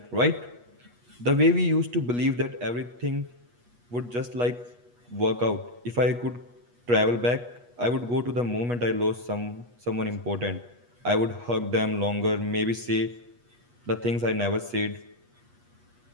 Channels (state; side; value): late; left; 8.3 ms